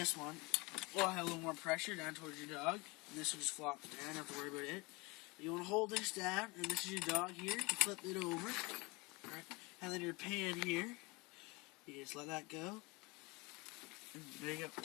one will have a little more pressure down towards your dog, and this will just flop down. You don't have to worry about it. You want to hold this down, and this is your dog here. You flip it over, right? And then your pan here, you just let that go. And there you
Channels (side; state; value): right; quieter; 25.7 dB